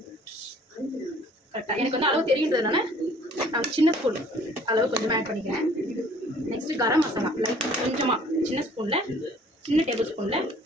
கரெக்டாக எனக்கு வந்து அளவு தெரியுன்றதுனால நான் சின்ன ஸ்பூன் அளவு கொஞ்சமாக ஆட் பண்ணிக்கிறேன். நெக்ஸ்ட்டு கரம் மசாலா லைட் கொஞ்சமாக சின்ன டேபிள் ஸ்பூனில்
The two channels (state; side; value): normal; both; correlation 0.55